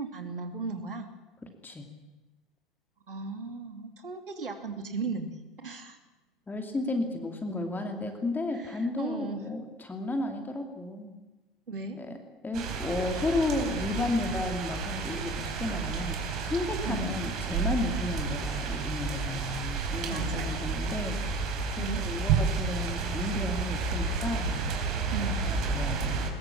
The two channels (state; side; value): normal; both; correlation 0.41